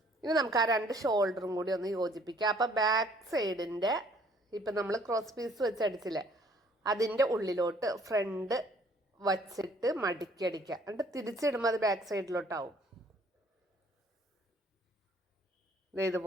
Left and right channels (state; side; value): normal; both; correlation 0.60